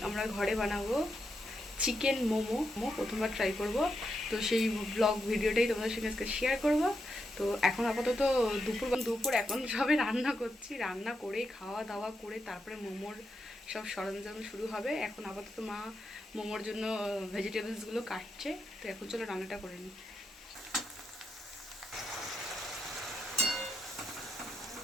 আমরা ঘরে বানাবো চিকেন মোমো। প্রথমবার ট্রাই করব, তো সেই ব্লগ ভিডিওটাই তোমাদের সঙ্গে আজকে শেয়ার করব। তো এখন আপাতত দুপুর এখন সবে রান্না করছি, রান্না করে খাওয়া দাওয়া করে তারপরে মোমোর সব সরঞ্জাম শুরু হবে। এখন আপাতত মা মোমোর জন্য ভেজিটেবলসগুলো কাটছে। তো এখন চলো রান্নাটা করে নিই।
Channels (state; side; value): normal; both; correlation 0.84